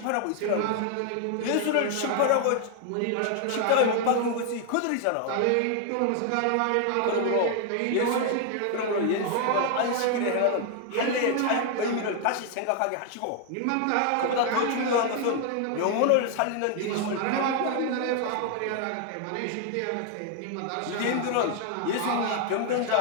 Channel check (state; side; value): different; both; correlation 0.00